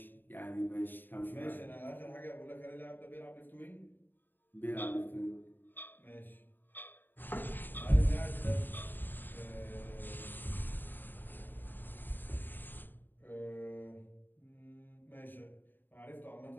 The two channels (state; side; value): late; right; 0.092 ms